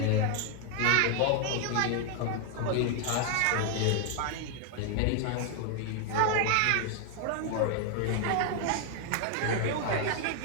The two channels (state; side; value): different; both; correlation 0.00